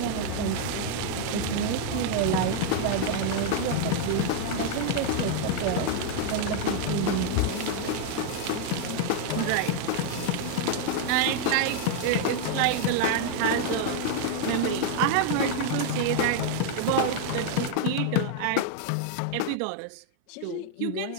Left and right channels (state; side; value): different; both; correlation 0.00